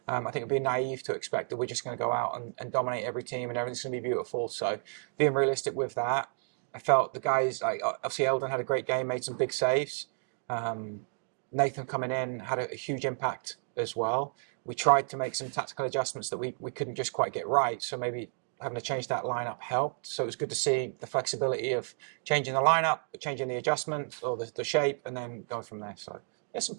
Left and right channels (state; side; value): silent; left; 57 dB below the other